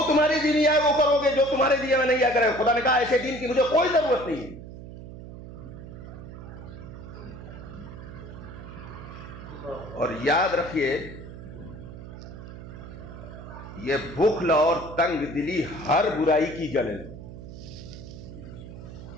تمہاری دین آئے وہ کرو گے، جو تمہارے دین میں نہیں آ کرے۔ خدا نے کہا ایسے دین کی مجھے کوئی ضرورت نہیں ہے۔ اور یاد رکھیے یہ بخل اور تنگ دلی ہر برائی کی جڑ ہے۔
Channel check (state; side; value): noise; right; hum, 13 dB below the sound